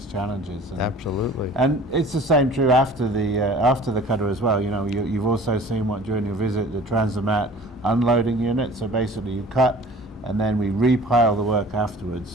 challenges. And, Absolutely. And it's the same true after the cutter as well. You've also seen what during your visit, the Transomat unloading unit. So basically, you cut, and then we repile the work afterwards.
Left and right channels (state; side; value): normal; both; correlation 0.46